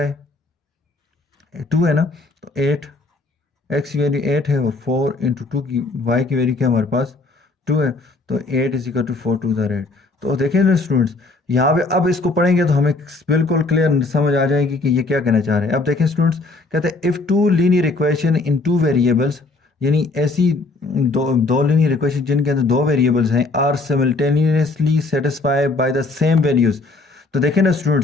है, 2 है ना। तो 8, x की वैल्यू 8 है और 4 इंटू 2 की y की वैल्यू क्या हमारे पास 2 है। तो 8 इज इक्वल टू 4 टू द रेट। तो देखें ना स्टूडेंट्स, यहाँ पे अब इसको पढ़ेंगे तो हमें बिल्कुल क्लियर समझ आ जाएगी कि ये क्या कहना चाह रहे हैं। अब देखें स्टूडेंट्स, कहते हैं इफ़ टू लीनियर इक्वेशन इन टू वेरिएबल्स, यानी ऐसी दो लीनियर इक्वेशन जिनके अंदर दो वेरिएबल्स हैं, आर सिमल्टेनियसली सेटिस्फाई बाय द सेम वैल्यूज़। तो देखें ना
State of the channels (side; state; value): right; quieter; 3.4 dB